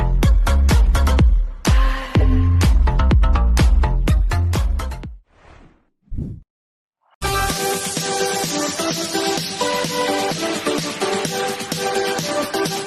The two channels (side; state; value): both; identical; correlation 1.00